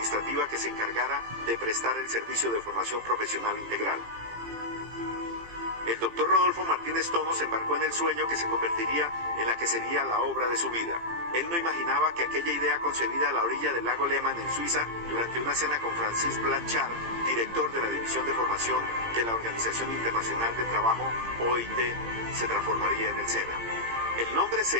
que se encargara de prestar el servicio de formación profesional integral. El doctor Rodolfo Martínez Tono se embarcó en el sueño que se convertiría en la que sería la obra de su vida. Él no imaginaba que aquella idea concebida a la orilla del lago Lehmann en Suiza, durante una cena con Francis Blanchard, director de la División de Formación de la Organización Internacional del Trabajo, OIT, se transformaría en el SENA. El nombre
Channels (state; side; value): late; left; 18 ms